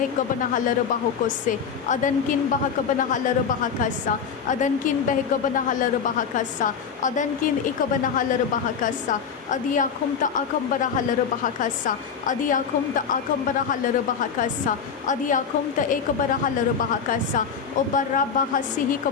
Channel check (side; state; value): right; quieter; 6.7 dB